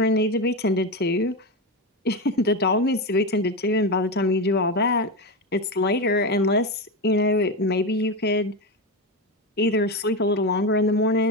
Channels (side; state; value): both; normal; correlation 0.15